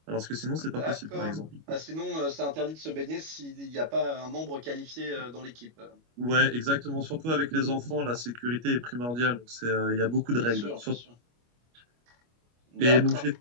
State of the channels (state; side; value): late; left; 25 ms